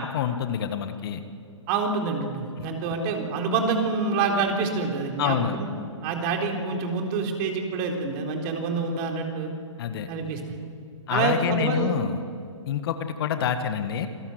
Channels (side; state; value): both; normal; correlation -0.12